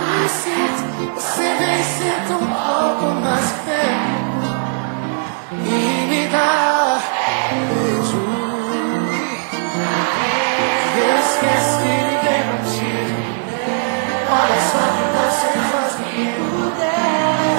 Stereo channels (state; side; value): silent; left; 63 dB below the other